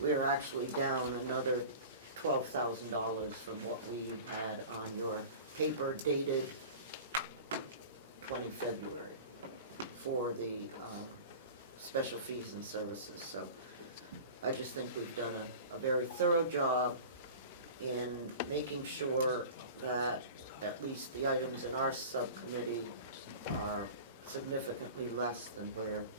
are actually down another $12,000 from what we had on your paper dated 20 February for the special fees and services. So I just think we've done a very thorough job in making sure that at least the items in our subcommittee are significantly less than where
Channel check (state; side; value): inverted; both; correlation -0.37